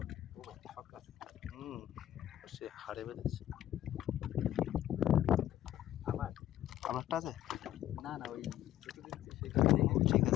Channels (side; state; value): right; quieter; 12.8 dB